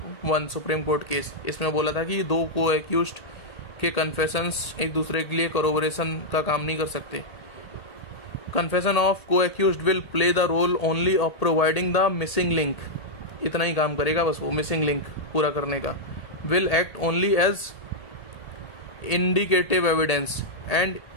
supreme court case, इसमें बोला था कि दो को एक्यूज्ड के कन्फेशंस एक दूसरे के लिए कोरोबोरेशन का काम नहीं कर सकते. Confession of co accused will play the role only of providing the missing link. इतना ही काम करेगा बस वो, मिसिंग लिंक पूरा करने का. Will act only as indicative evidence and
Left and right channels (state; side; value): late; right; 1.8 ms